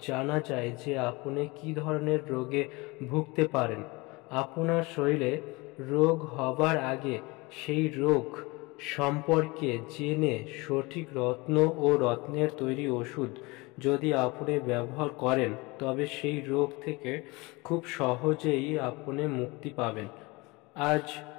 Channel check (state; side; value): quieter; right; 24.6 dB